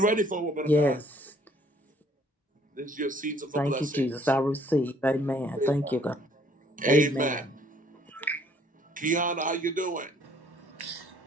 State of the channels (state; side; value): normal; both; correlation 0.62